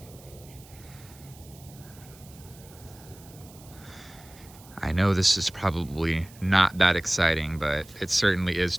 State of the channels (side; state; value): right; noise; hiss, 22 dB below the sound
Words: I know this is probably not that exciting, but it certainly is